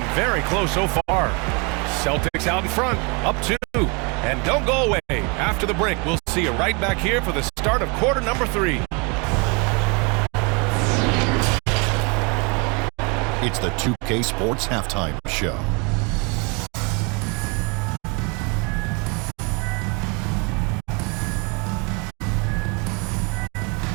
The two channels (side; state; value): left; quieter; 32.0 dB